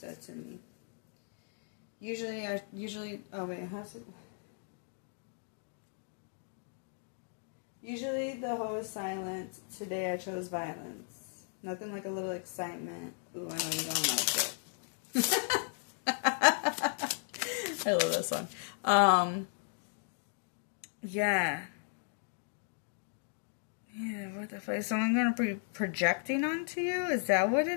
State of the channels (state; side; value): silent; right; 54 dB below the other